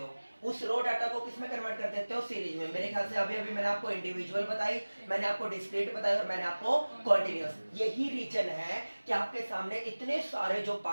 उस रो डाटा को किस में कन्वर्ट कर देते हो, सीरीज में। मेरे ख्याल से अभी मैंने आपको इंडिविजुअल बताई, मैंने आपको डिस्क्रीट बताई और मैंने आपको कॉन्टिन्यूअस। यही रीजन है कि आपके सामने इतने सारे जो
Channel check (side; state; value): both; inverted; correlation -1.00